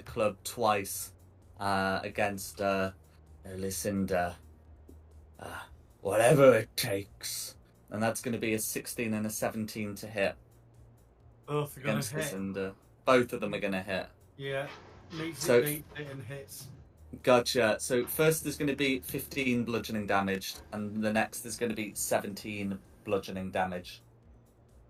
club twice against Lucinda. Whatever it takes. And that's going to be a 16 and a 17 to hit Both are going against to hit. Lucinda. Both of them are going to hit. Yeah. Meets So- it, beats it, and hits. Gotcha. So first there's going to be 15 bludgeoning damage, and the next is going to be 17 bludgeoning damage.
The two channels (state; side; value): identical; both; correlation 1.00